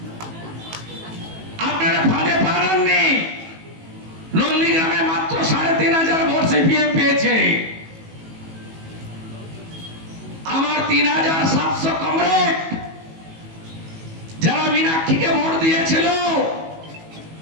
আপনারা ফাঁদে পারেননি। নন্দীগ্রামে মাত্র 3500 ভোট সিপিএম পেয়েছে। আমার 3700 কমরেড যারা মীনাক্ষীকে ভোট দিয়েছিল,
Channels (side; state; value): left; late; 18 ms